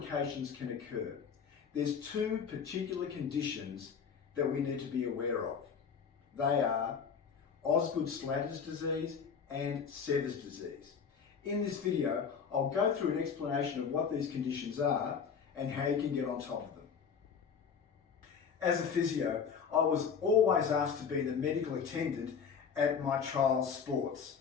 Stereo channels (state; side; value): quieter; right; 6.5 dB